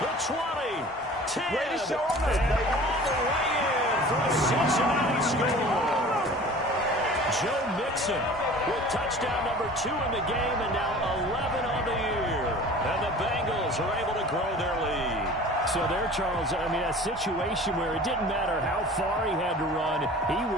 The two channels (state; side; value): normal; both; correlation 0.43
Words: the 20, 10, and all the way in for a Cincinnati score. Joe Mixon with touchdown number 2 in the game and now 11 on the year. And the Bengals are able to grow their lead. So there, Charles, I mean, a situation where it didn't matter how far he had to run, he